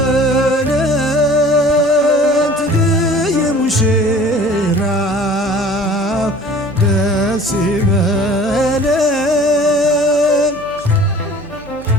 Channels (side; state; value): left; noise; hum, 23 dB below the sound